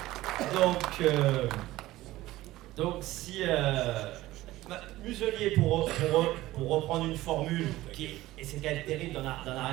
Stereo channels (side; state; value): left; quieter; 16.8 dB